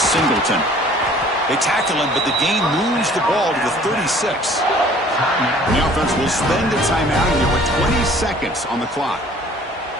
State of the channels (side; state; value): both; normal; correlation 0.52